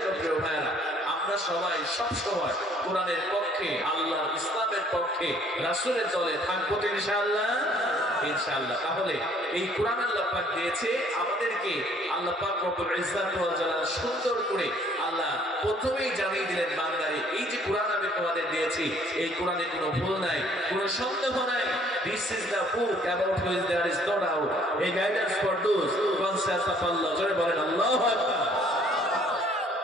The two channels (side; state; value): both; normal; correlation 0.60